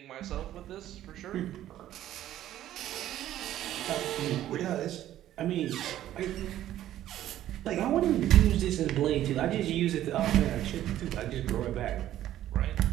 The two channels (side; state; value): left; quieter; 12.7 dB